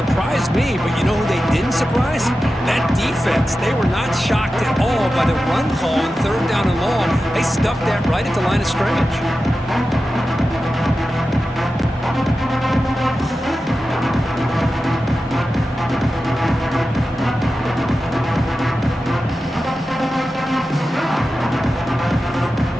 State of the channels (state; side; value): normal; both; correlation 0.93